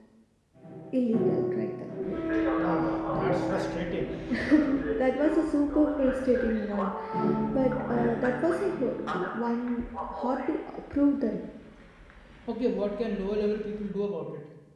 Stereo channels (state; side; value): identical; both; correlation 1.00